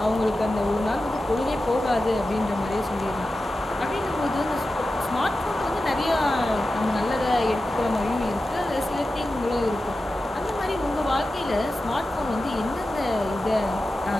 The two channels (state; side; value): normal; both; correlation 0.93